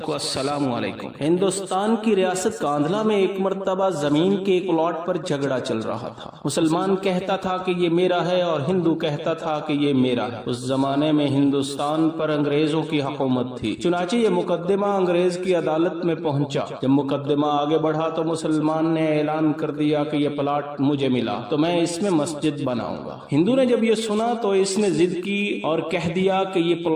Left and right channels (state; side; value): identical; both; correlation 1.00